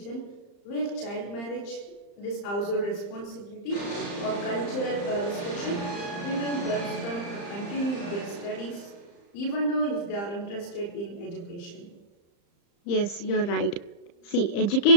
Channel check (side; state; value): right; late; 35 ms